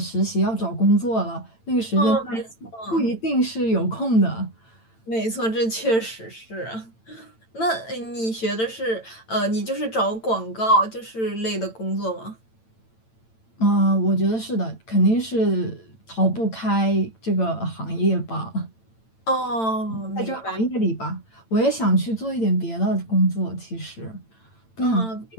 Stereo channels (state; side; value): late; right; 8.9 ms